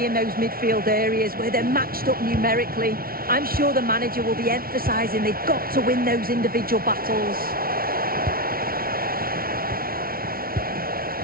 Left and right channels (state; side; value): late; left; 0.43 ms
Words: in those midfield areas where they're matched up numerically. I'm sure the manager will be emphasising they've got to win those individual battles.